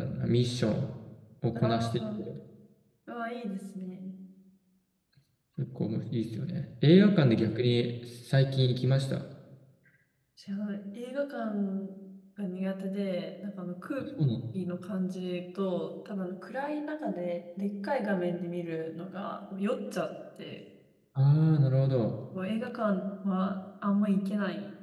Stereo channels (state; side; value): identical; both; correlation 1.00